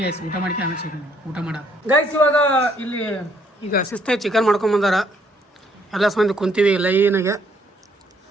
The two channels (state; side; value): normal; both; correlation 0.67